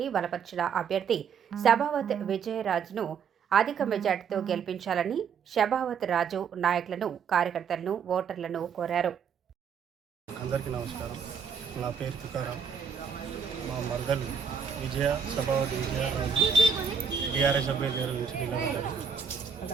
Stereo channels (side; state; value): left; quieter; 6.5 dB